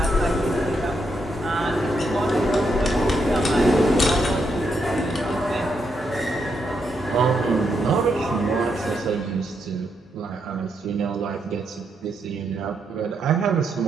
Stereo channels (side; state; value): both; normal; correlation 0.80